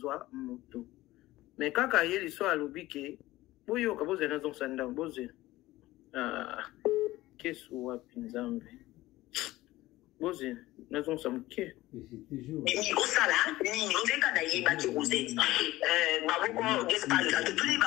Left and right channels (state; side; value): quieter; right; 17.5 dB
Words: moto me kaka ye liso alobi ke boyoka bozela nazongisa ndango bozela kesu wapi nzambe bozela nazongisa moke Nini osala nini ondeka na yeba ki Rosette baboko gespa de tous